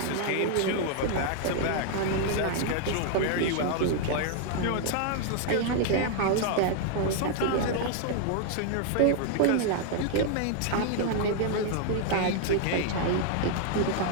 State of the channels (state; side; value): different; both; correlation 0.00